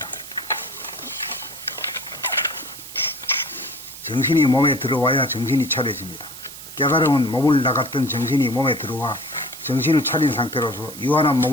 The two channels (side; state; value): right; noise; hiss, 14 dB below the sound